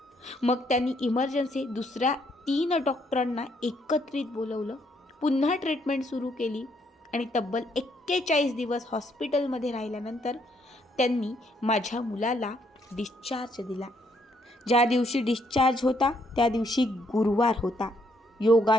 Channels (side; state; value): both; normal; correlation 0.72